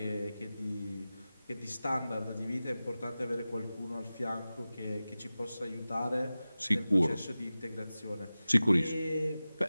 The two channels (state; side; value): inverted; both; correlation -0.96